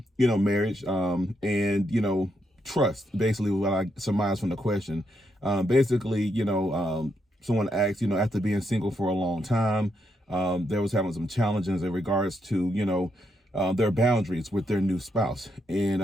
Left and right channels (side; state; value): both; normal; correlation 0.80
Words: and, trust, basically what I surmised from the question. Someone asked, after being single for a long time, there was having some challenges in regards to, their boundaries with their new spouse.